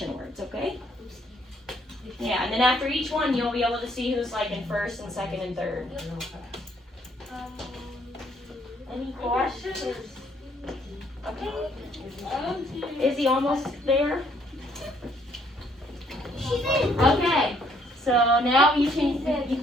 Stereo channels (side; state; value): both; normal; correlation 0.67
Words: words, okay? Yeah, and then after each one, you'll be able to see who's like in first and second and third. Any questions? Okay. Is he almost there? Okay. So now you can